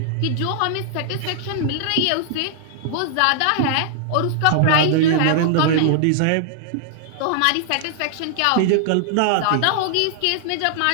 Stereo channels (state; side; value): different; both; correlation -0.01